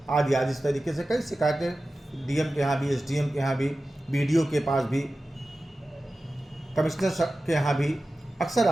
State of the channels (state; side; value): normal; both; correlation 0.95